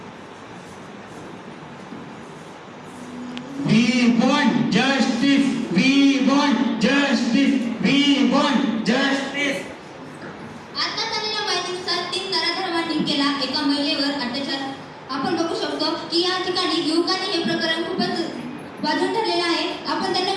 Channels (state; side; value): identical; both; correlation 1.00